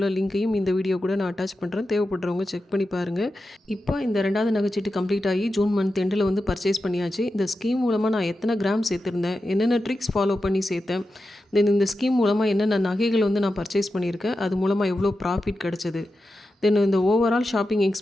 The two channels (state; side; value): normal; both; correlation 0.91